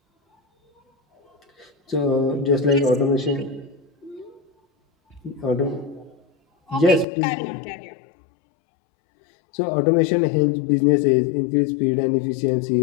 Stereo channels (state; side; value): drops out; right; at 7.1 s